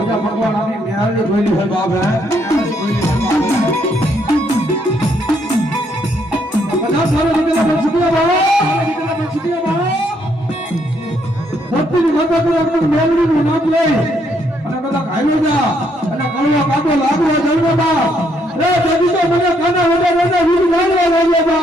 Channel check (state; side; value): normal; both; correlation 0.72